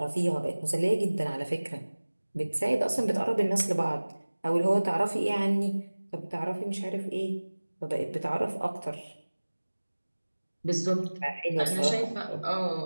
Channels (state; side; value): inverted; both; correlation -1.00